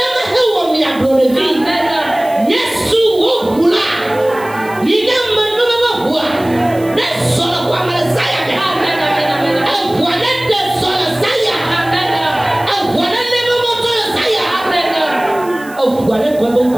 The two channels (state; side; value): noise; right; hiss, 21 dB below the sound